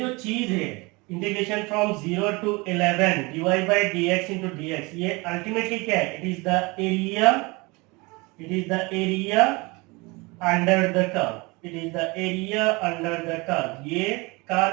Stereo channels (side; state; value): left; quieter; 25.7 dB